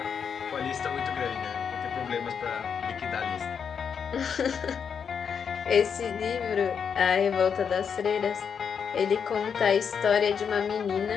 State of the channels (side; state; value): right; quieter; 6.9 dB